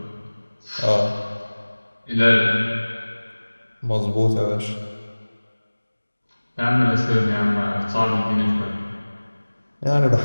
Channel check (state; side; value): inverted; both; correlation -1.00